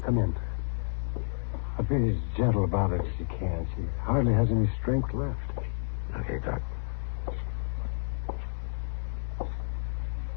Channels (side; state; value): right; silent; 58 dB below the other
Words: Come in. I'll be as gentle about it as you can. She hardly has any strength left. Okay, Doc.